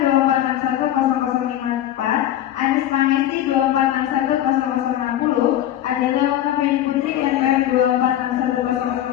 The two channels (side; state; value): right; quieter; 12.1 dB